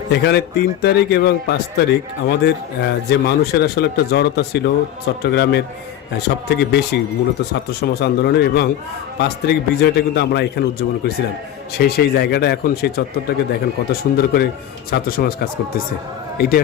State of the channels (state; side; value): quieter; right; 11.1 dB